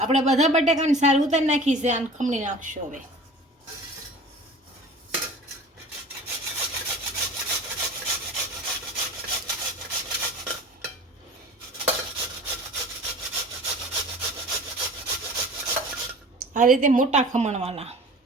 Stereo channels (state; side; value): normal; both; correlation 0.41